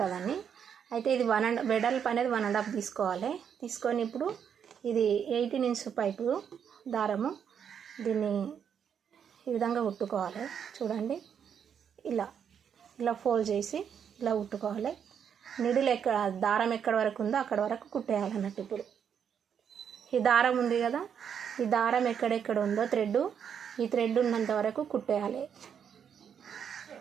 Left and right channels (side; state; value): left; quieter; 7.9 dB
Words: అయితే ఇది వెడల్పు అనేది 1.5 తీసుకోవాలి. తీసుకొని ఇప్పుడు ఇది 18 ఇంచ్ పైపు దారము, దీన్ని ఈ విధంగా కుట్టుకోవాలి. చూడండి, ఇలా ఫోల్డ్ చేసి ఇలా కుట్టుకోవాలి. నిడిల్ దారం ఎక్కడ వరకు ఉందో అక్కడ వరకు కుట్టేయాలన్నట్టు. ఇప్పుడు ఈ దారం ఉంది కదా, ఈ దారం ఎక్కడెక్కడ ఉందో ఈ థ్రెడ్ ఉన్నంత వరకు కుట్టేయాలి.